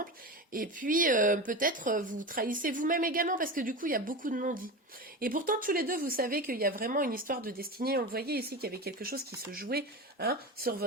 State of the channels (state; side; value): normal; both; correlation 0.25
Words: et puis peut-être vous trahissez vous-même également, parce que du coup, il y a beaucoup de non-dits. Et pourtant, tous les deux, vous savez qu'il y a vraiment une histoire de destinée. On le voyait ici, qu'il y avait quelque chose qui se jouait, hein, sur